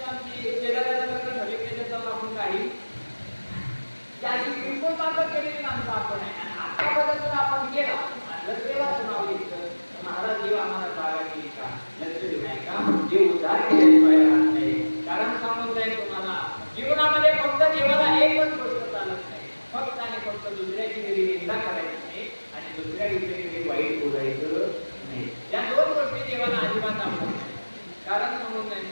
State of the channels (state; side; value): inverted; both; correlation -1.00